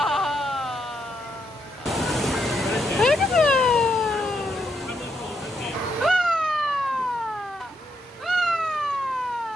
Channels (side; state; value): both; normal; correlation 0.78